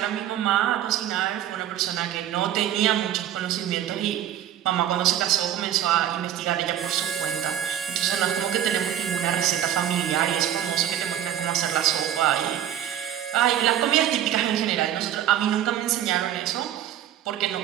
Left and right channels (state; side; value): quieter; left; 11.1 dB